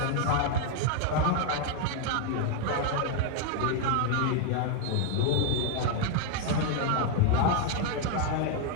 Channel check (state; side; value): different; both; correlation 0.01